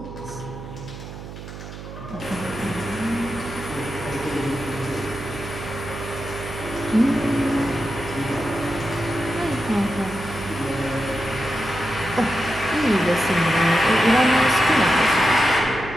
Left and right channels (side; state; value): right; noise; hum, 12 dB below the sound